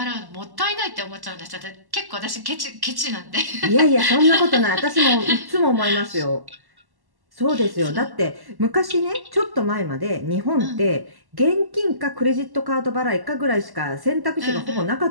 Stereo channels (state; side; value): late; left; 1.1 ms